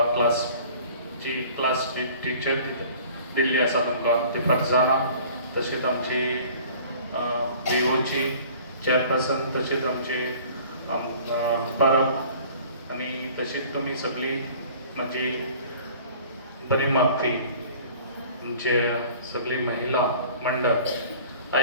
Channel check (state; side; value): inverted; both; correlation -0.48